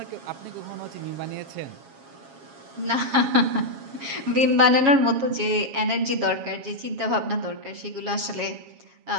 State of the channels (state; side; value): late; left; 7.3 ms